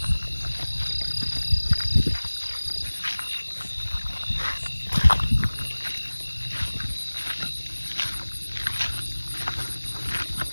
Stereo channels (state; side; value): inverted; both; correlation -1.00